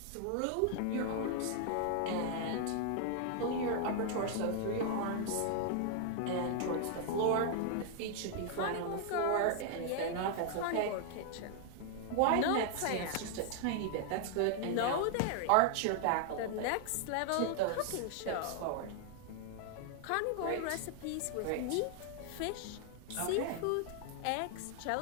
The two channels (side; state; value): both; different; correlation 0.00